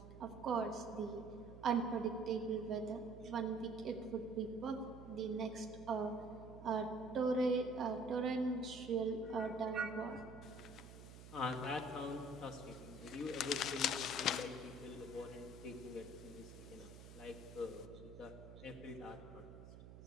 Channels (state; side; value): noise; right; hum, 14 dB below the sound